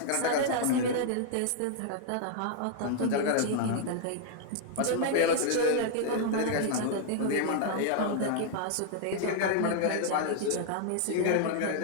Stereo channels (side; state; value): both; different; correlation -0.01